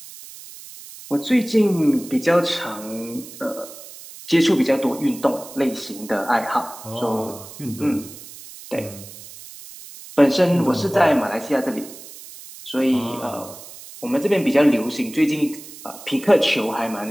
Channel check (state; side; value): noise; right; hiss, 16 dB below the sound